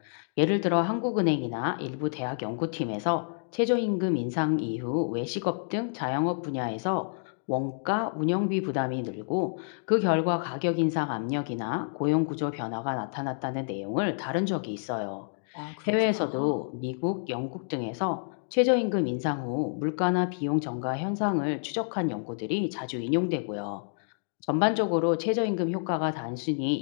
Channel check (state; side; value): silent; right; digital silence